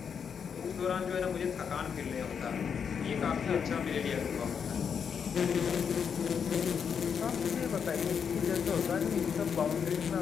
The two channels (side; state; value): right; quieter; 6.9 dB